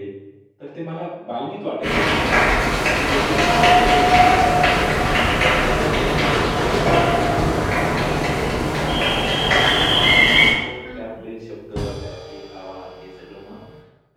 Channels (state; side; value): identical; both; correlation 1.00